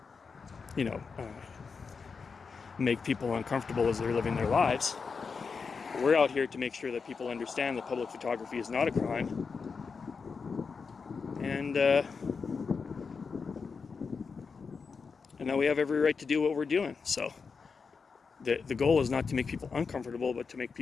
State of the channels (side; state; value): right; quieter; 5.2 dB